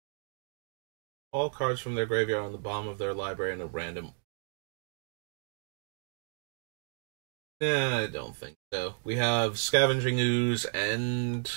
All cards from their graveyard on the bottom of their library in a random. Yeah, I don't think so. We have Scavenging Ooze and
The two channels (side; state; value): left; silent; 56 dB below the other